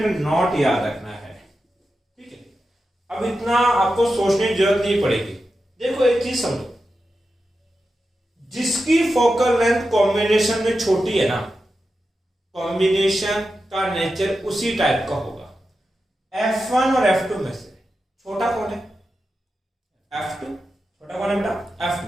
नोट याद रखना है, ठीक है। अब इतना आपको सोचने की जरूरत नहीं पड़ेगी। देखो एक चीज समझो, जिसकी फोकल लेंथ कॉम्बिनेशन में छोटी है ना, कॉम्बिनेशन का नेचर उसी टाइप का होगा। F1 और F2 में से छोटा कौन है, F2। छोटा कौन है बेटा, F2।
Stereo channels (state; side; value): normal; both; correlation 0.90